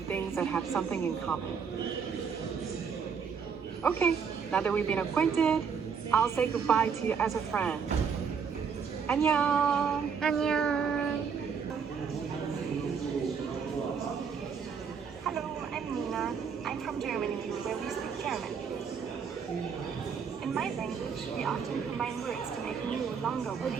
that have something in common. Okay, now that we've been acquainted, I'll say goodbye to you as a friend. 안녕. 안녕. Hello, I'm Nina. I'm from Germany, where we speak German. In my language, we often combine words to make new, longer words.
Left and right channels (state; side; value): quieter; left; 6.4 dB